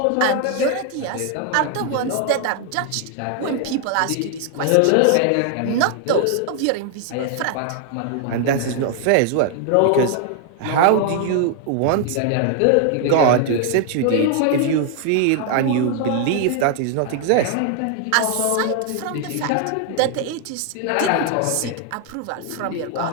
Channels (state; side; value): different; both; correlation 0.00